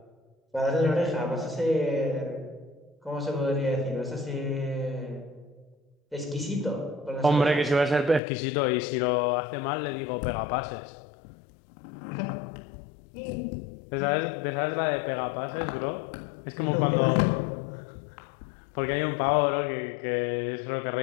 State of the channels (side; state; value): right; drops out; at 8.2 s